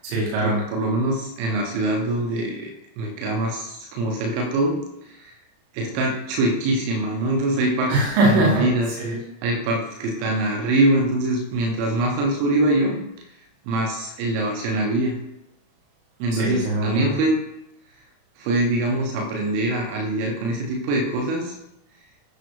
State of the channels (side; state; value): left; late; 35 ms